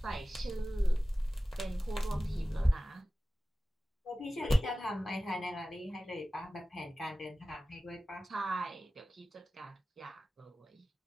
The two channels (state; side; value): normal; both; correlation 0.96